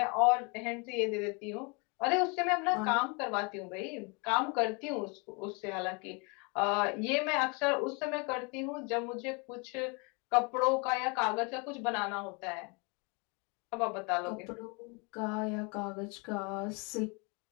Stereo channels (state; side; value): quieter; right; 31.8 dB